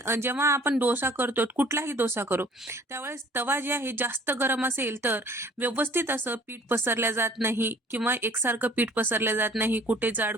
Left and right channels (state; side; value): normal; both; correlation 0.53